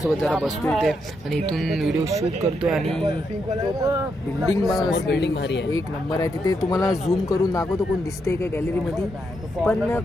जरा बसतो इथे आणि इथून व्हिडिओ शूट करतोय. आणि बिल्डिंग भारी आहे, एक नंबर आहे. तिथे तुम्हाला झूम करून दाखवतो कोण दिसतंय का गॅलरीमध्ये, पण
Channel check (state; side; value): normal; both; correlation 0.80